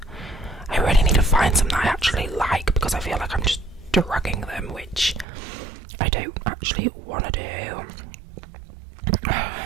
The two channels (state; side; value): drops out; left; at 5.2 s